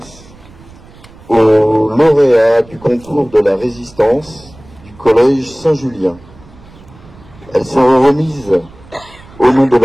aux lauréats du concours de la résistance du collège Saint-Julien. Elles seront remises au nom de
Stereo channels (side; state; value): right; noise; rumble, 23 dB below the sound